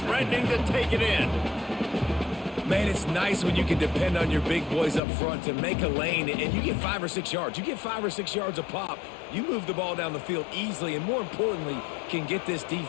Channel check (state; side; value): drops out; right; at 5.0 s